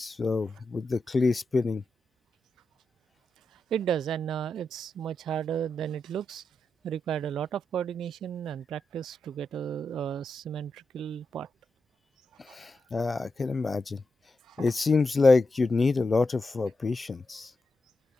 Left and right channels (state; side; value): normal; both; correlation 0.87